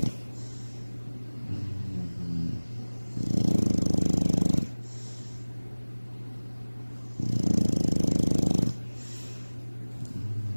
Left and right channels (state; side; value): inverted; both; correlation -1.00